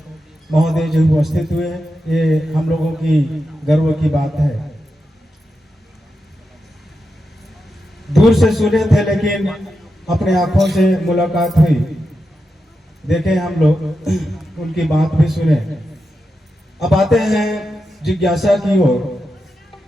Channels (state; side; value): normal; both; correlation 0.88